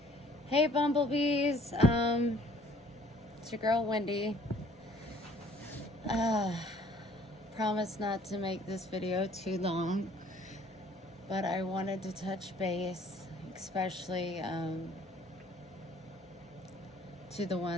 Hey, bumblebees. It's your girl, Wendy. Promise not to make this video too long, but I wanted to touch base, especially to the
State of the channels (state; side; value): normal; both; correlation 0.57